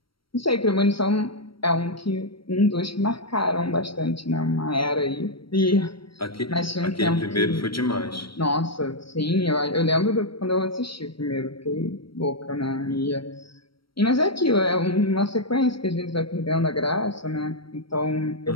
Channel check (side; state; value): right; late; 0.74 ms